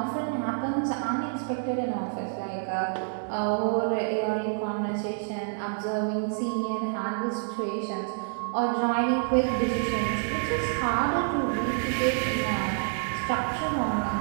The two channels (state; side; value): silent; left; digital silence